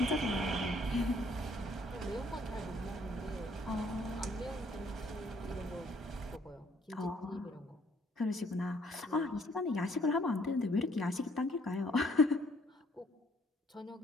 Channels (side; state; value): both; normal; correlation 0.64